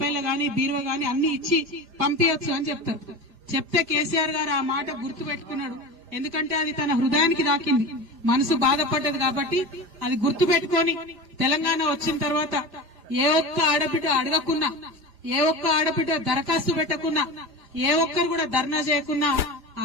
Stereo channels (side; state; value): left; late; 5.0 ms